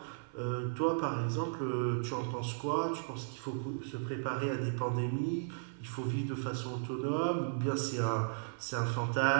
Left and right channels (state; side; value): silent; left; 54 dB below the other